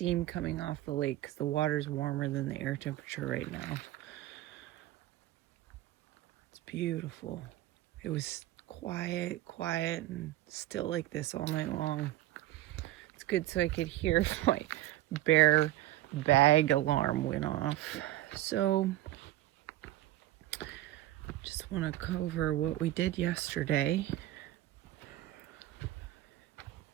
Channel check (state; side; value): quieter; left; 15.3 dB